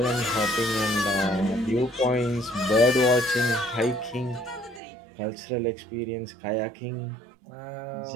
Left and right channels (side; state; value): left; drops out; at 4.8 s